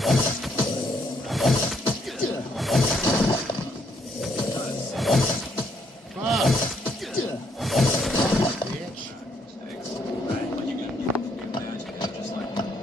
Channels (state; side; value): normal; both; correlation 0.71